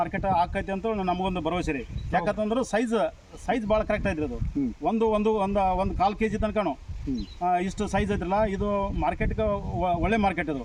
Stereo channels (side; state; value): both; identical; correlation 1.00